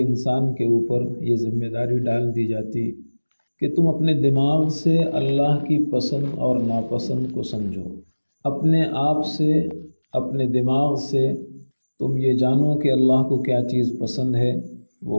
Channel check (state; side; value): inverted; both; correlation -1.00